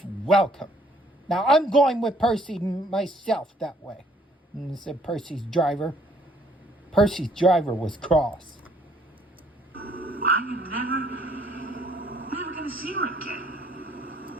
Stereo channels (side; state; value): both; normal; correlation 0.63